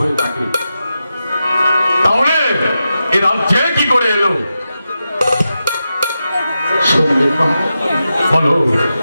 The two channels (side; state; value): both; inverted; correlation -0.90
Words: থাকে, তাহলে এ রাজ্যে কি করে এলো? বলো